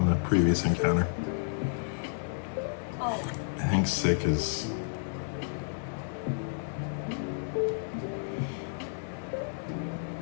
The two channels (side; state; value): right; silent; digital silence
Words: the previous encounter. I think Sick is...